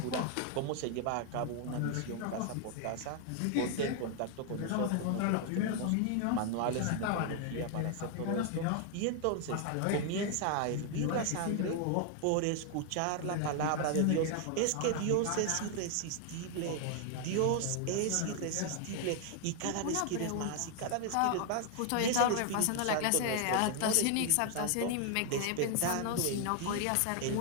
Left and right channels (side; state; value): both; different; correlation 0.00